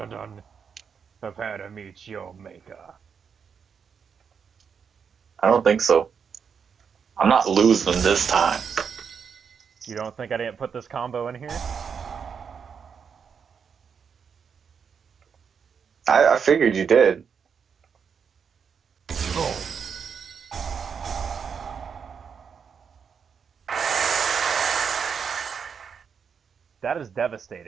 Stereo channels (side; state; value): left; quieter; 6.6 dB